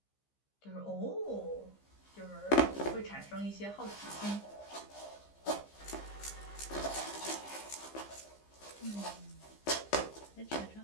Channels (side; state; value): right; late; 15 ms